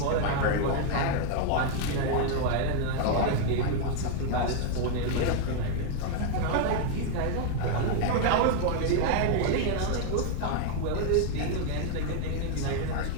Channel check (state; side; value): different; both; correlation 0.00